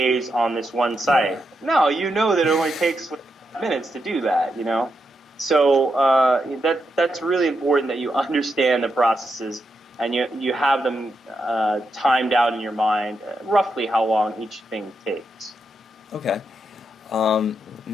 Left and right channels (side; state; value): both; normal; correlation 0.84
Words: on this one site. No, you know that it only takes minutes to do that, So that's really important, that you understand the processes and you have them timed out in your mind, roughly how long each thing takes. Okay.